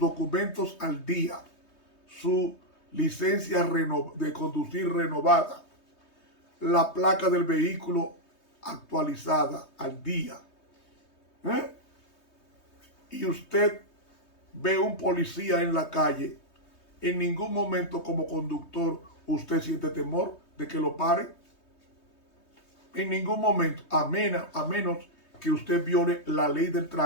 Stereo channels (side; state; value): right; late; 3.2 ms